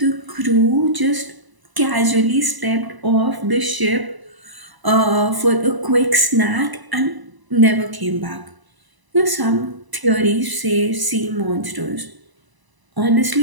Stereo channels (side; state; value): left; late; 1.0 ms